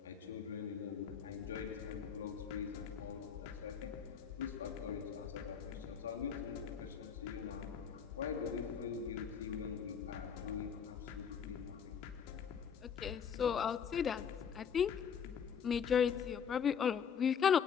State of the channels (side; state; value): right; quieter; 7.2 dB